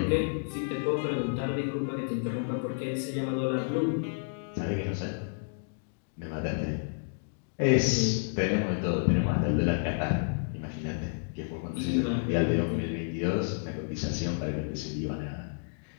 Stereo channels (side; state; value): right; silent; digital silence